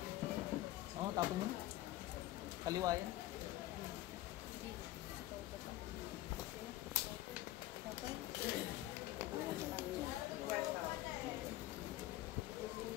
Oo, tapon mo na. Kaliwa yan.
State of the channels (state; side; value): quieter; right; 15.6 dB